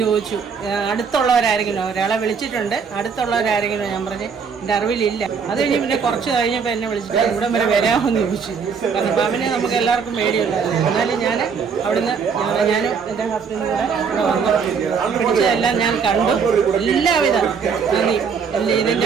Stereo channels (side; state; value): left; quieter; 6.0 dB